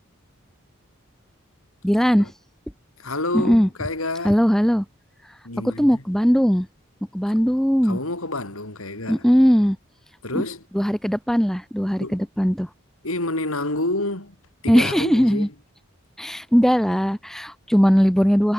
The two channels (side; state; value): both; normal; correlation 0.91